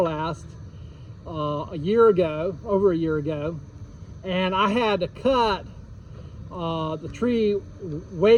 last, over a year ago, and I had to cut the tree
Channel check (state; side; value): identical; both; correlation 1.00